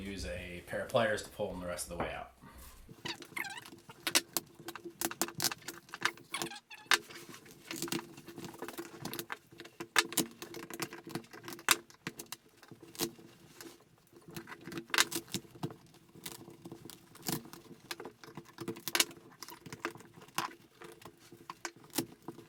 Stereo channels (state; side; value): identical; both; correlation 1.00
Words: pair of pliers to pull them the rest of the way out.